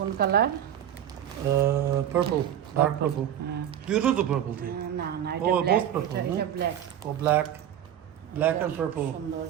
কালার? Purple, dark purple. দুটো তো পার্পল থি। না না, Oh, এটা ব্ল্যাক। both purple, এটা no? ব্ল্যাক। ও ব্ল্যাক, ব্ল্যাক এন্ড পার্পল। সুন্দর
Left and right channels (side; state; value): left; quieter; 10.4 dB